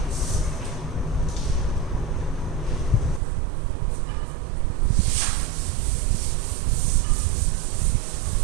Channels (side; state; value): left; drops out; at 3.2 s